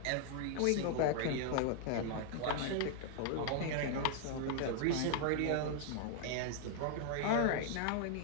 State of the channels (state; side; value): different; both; correlation 0.00